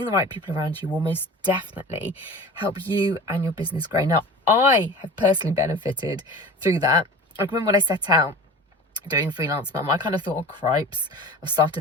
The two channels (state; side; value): normal; both; correlation 0.37